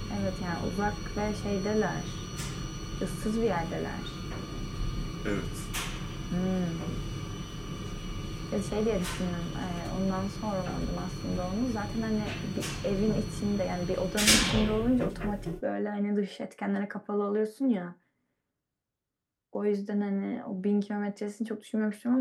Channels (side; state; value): both; identical; correlation 1.00